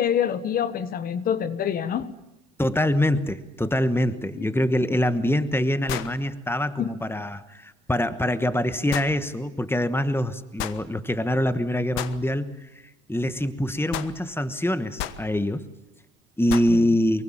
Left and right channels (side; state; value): both; normal; correlation 0.79